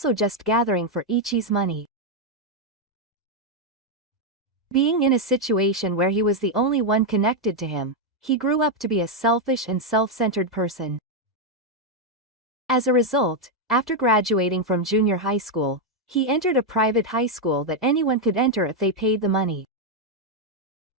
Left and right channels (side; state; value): both; normal; correlation 0.01